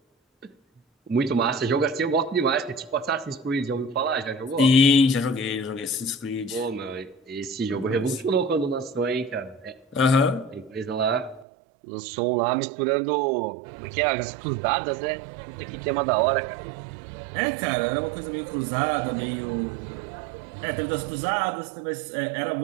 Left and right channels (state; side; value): drops out; left; at 11.5 s